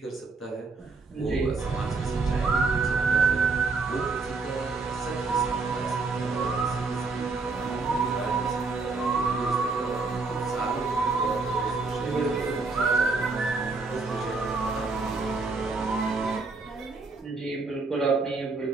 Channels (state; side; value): quieter; left; 4.0 dB